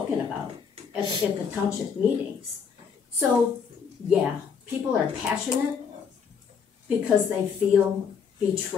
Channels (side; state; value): right; quieter; 6.4 dB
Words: about at the township meetings. So, yeah, people are passionate because they feel